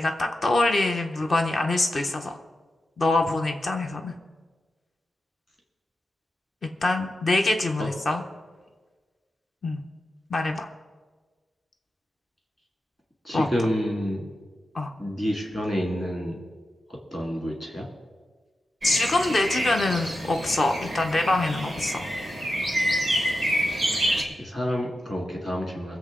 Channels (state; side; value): normal; both; correlation 0.90